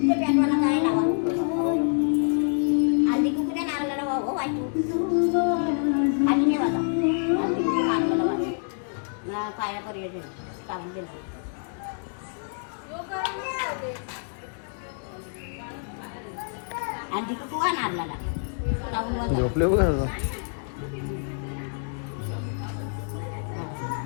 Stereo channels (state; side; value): silent; right; 60 dB below the other